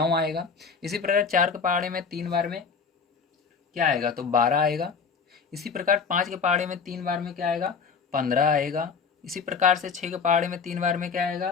आएगा। इसी प्रकार 4 के पहाड़े में 3 बार में क्या आएगा, तो 12 आएगा। इसी प्रकार 5 के पहाड़े में 3 बार में क्या आएगा, 15 आएगा। इसी प्रकार से 6 के पहाड़े में 3 बार में क्या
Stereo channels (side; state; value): right; quieter; 5.7 dB